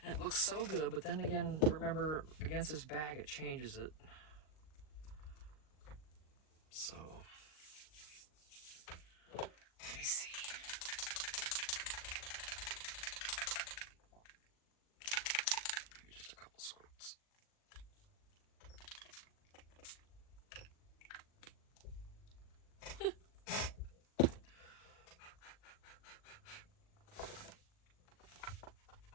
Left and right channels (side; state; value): right; late; 39 ms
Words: and it looks so good. But then again, remember, against this bag, it changes it. So let me see. Maybe just a couple squirts.